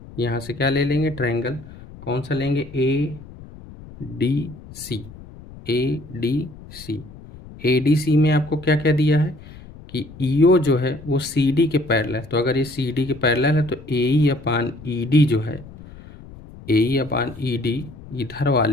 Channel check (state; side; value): noise; left; rumble, 18 dB below the sound